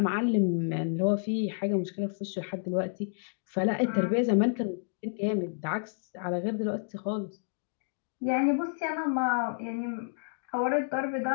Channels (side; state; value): right; silent; digital silence